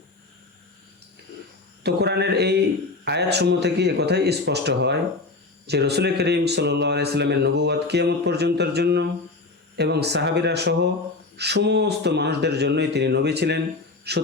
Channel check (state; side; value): quieter; right; 3.5 dB